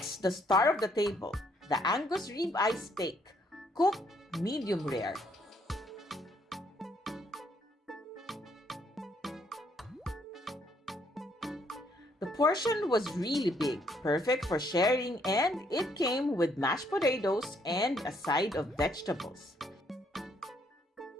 the star of the table, the Angus rib eye steak, cooked medium rare. The portion was really big, perfect for sharing, and it came with mashed potatoes and a side of vegetables.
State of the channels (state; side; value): normal; both; correlation 0.69